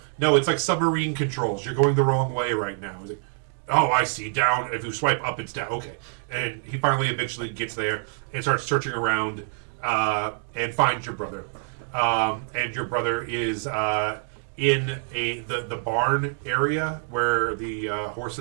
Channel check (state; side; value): silent; left; digital silence